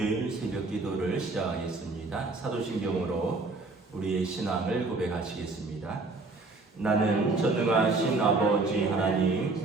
새벽 기도를 시작하겠습니다. 사도신경으로 우리의 신앙을 고백하시겠습니다. 나는 전능하신 아버지 하나님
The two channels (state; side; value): quieter; left; 3.5 dB